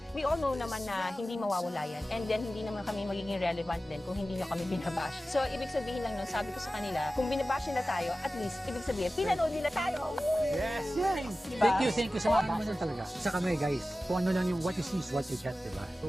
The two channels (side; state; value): both; normal; correlation 0.95